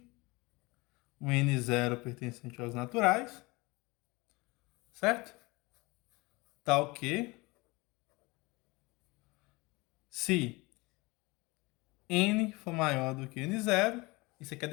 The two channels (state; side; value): quieter; right; 24.2 dB